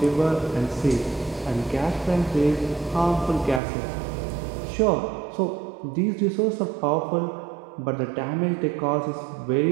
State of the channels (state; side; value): drops out; left; at 3.6 s